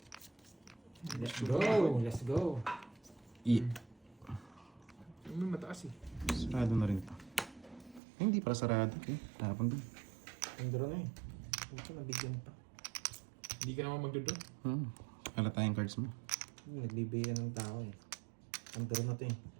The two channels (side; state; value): left; drops out; at 8.0 s